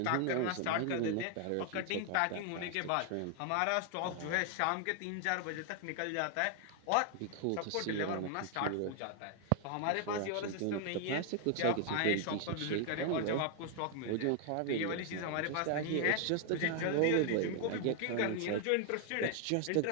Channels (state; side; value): different; both; correlation 0.00